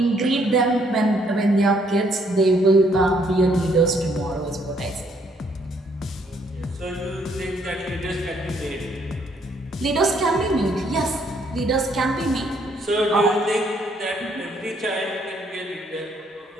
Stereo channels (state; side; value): normal; both; correlation 0.68